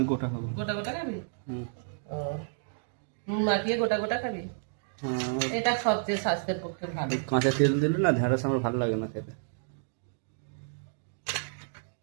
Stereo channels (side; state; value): left; silent; digital silence